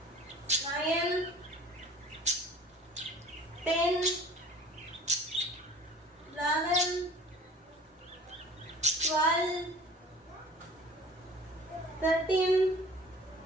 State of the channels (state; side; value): normal; both; correlation 0.47